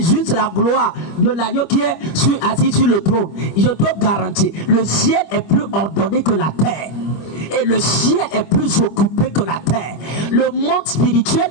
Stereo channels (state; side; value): late; right; 25 ms